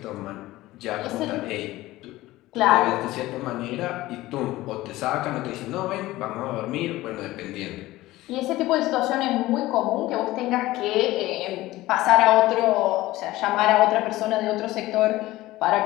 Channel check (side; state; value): right; quieter; 17.4 dB